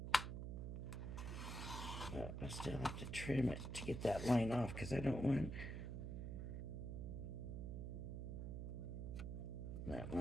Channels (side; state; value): right; noise; hum, 4 dB below the sound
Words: But I still have to trim it to get that line off because I don't want that